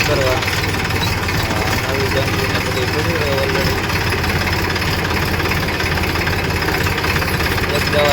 કરવા. નવી જંગીને બધી પડી રહે ઓલરેડી. એક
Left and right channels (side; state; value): both; identical; correlation 1.00